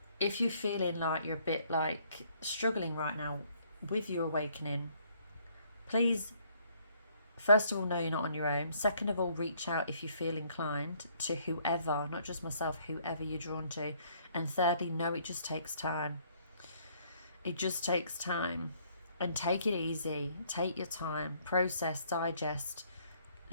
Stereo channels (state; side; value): inverted; both; correlation -0.65